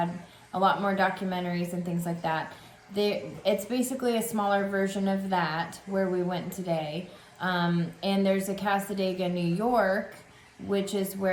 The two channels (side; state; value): both; identical; correlation 1.00